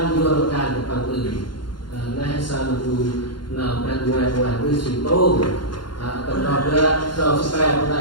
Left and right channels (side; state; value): right; late; 0.71 ms